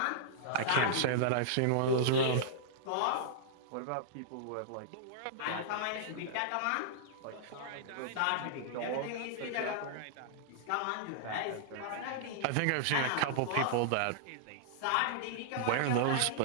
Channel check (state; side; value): different; both; correlation -0.02